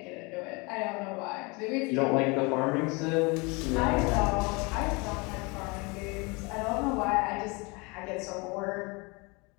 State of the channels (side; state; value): right; quieter; 28.1 dB